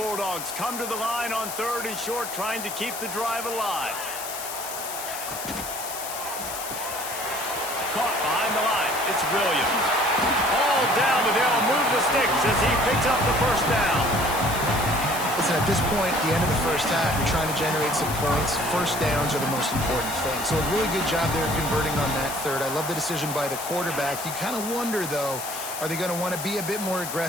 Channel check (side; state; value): left; noise; hiss, 8 dB below the sound